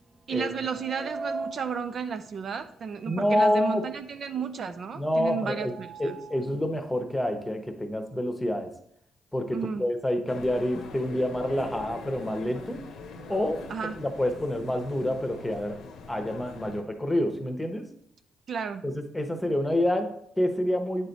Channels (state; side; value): normal; both; correlation 0.89